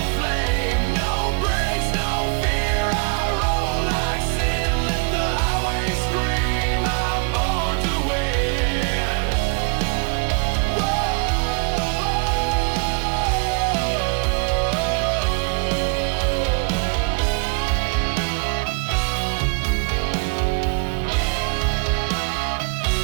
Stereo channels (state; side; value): quieter; left; 33.9 dB